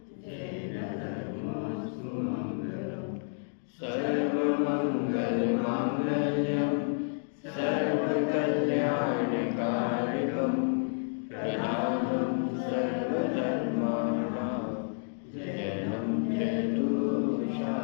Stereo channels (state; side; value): silent; right; digital silence